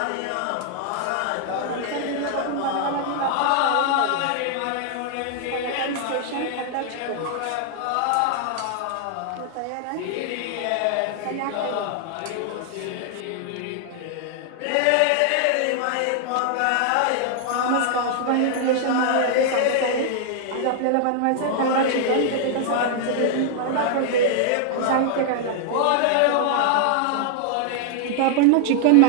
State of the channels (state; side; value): different; both; correlation 0.00